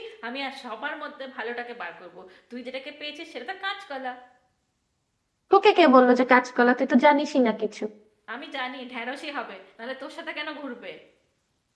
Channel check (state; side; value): identical; both; correlation 1.00